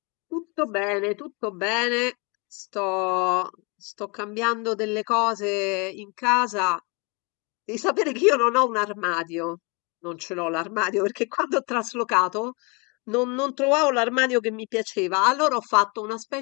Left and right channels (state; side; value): quieter; right; 30.7 dB